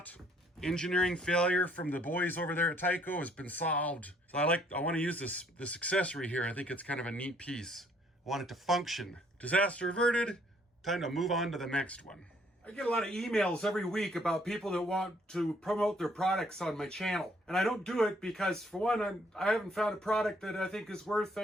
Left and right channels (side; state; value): both; normal; correlation 0.64